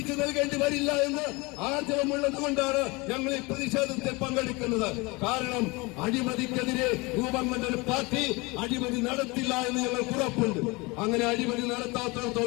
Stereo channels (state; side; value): quieter; right; 25.5 dB